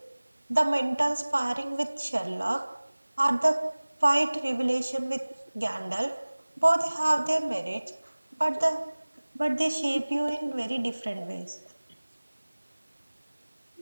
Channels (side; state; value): both; inverted; correlation -1.00